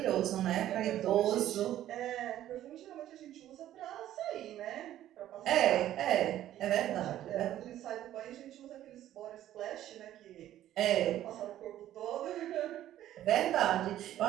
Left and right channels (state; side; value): quieter; left; 12.6 dB